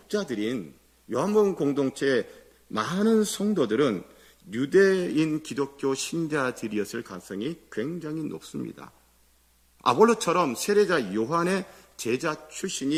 요한복음 공동체의 많은 성도들은 유대인 기독교 신자들이었을 가능성이 굉장히 높습니다. 아볼로처럼 세례자 요한의 제자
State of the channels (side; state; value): both; identical; correlation 1.00